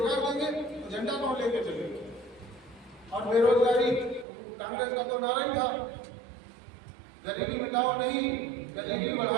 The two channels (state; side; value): drops out; left; at 4.2 s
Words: देंगे तो झंडा कौन लेके चलेगा? और बेरोजगारी कांग्रेस का तो नारा ही था, गरीबी मिटाओ नहीं गरीबी